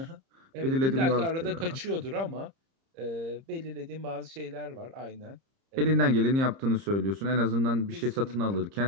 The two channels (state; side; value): late; left; 30 ms